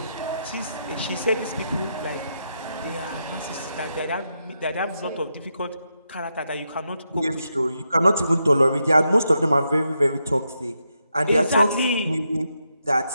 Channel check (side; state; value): both; inverted; correlation -0.83